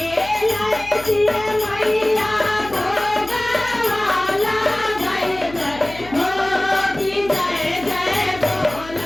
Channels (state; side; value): noise; left; hum, 17 dB below the sound